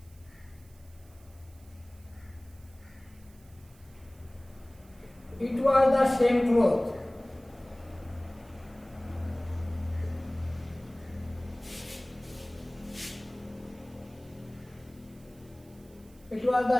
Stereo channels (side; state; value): right; noise; hiss, 28 dB below the sound